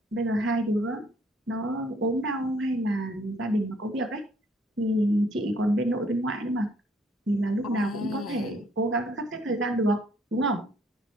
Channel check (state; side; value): normal; both; correlation 0.64